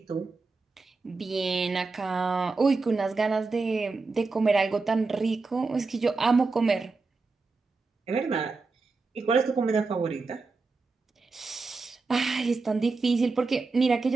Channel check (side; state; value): left; quieter; 4.0 dB